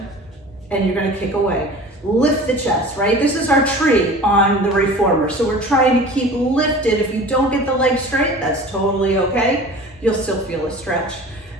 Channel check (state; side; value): normal; both; correlation 0.40